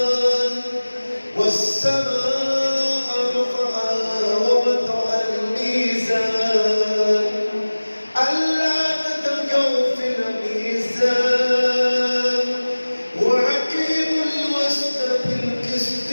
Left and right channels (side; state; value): both; inverted; correlation -1.00